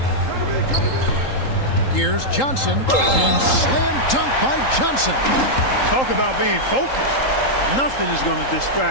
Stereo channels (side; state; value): right; late; 3.8 ms